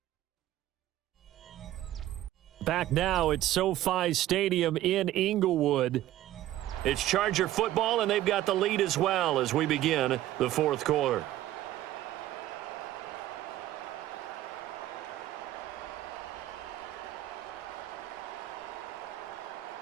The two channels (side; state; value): left; quieter; 14.1 dB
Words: Back now at SoFi Stadium in Inglewood. It's Charger football, and they've got the lead as well as we begin the 4th quarter.